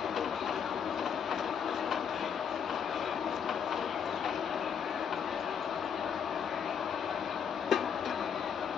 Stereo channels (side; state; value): right; quieter; 7.5 dB